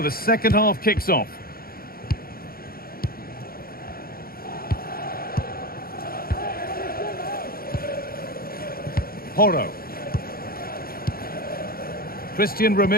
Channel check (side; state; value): right; late; 0.43 ms